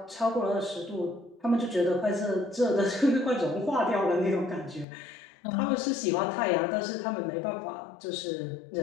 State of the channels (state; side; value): drops out; right; at 4.9 s